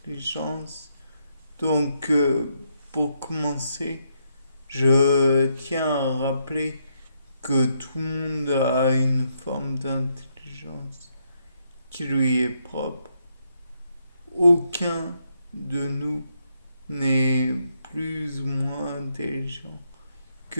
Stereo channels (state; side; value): inverted; both; correlation -0.77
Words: Donc, pour commencer, je tiens à rappeler que tout le monde a une forme d'intelligence qui lui est propre. Aucun de nous n'est plus ou moins intelligent que